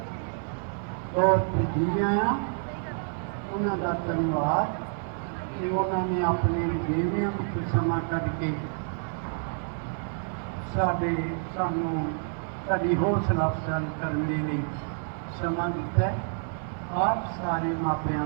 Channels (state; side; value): silent; left; 57 dB below the other